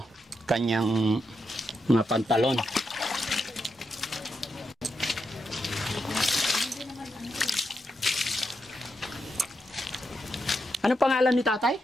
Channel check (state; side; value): normal; both; correlation 0.84